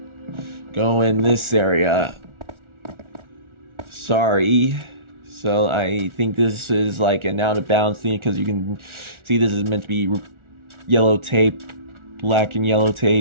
go in this area. Sorry. So I think this is like an out of bounds thing because you can see this is meant to be yellow tape, black and yellow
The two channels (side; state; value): left; late; 1.4 ms